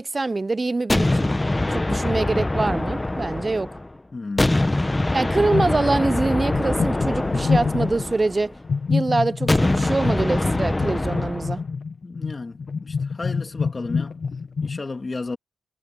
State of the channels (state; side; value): normal; both; correlation 0.95